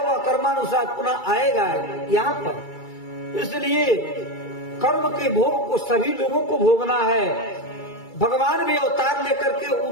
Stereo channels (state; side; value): late; right; 2.3 ms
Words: कर्मानुसार पुनः आएगा यहाँ पर। इसलिए कर्म के भोग को सभी लोगों को भोगना है। भगवान भी अवतार लेकर के